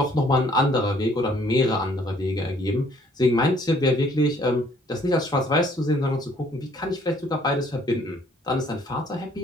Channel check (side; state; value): both; normal; correlation 0.62